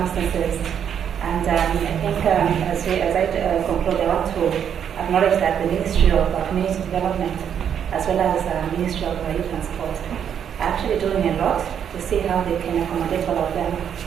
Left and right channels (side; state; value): left; quieter; 8.5 dB